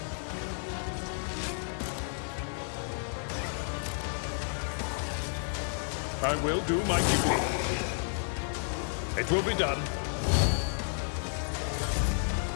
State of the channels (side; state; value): right; silent; 55 dB below the other